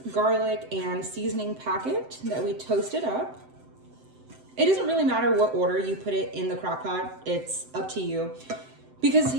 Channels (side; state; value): left; late; 7.8 ms